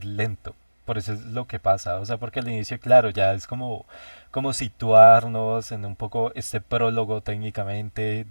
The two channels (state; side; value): inverted; both; correlation -1.00